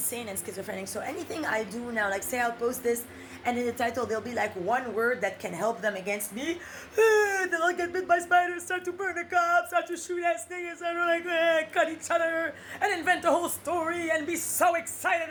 and schizophrenic. So anything I do now, like say I'll post this and in the title there'll be like one word that can help them against me. They'll all get bit by spiders, start to burn the cops, start to shoot at niggas, and like cut each other and invent a whole story and be so excited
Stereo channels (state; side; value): identical; both; correlation 1.00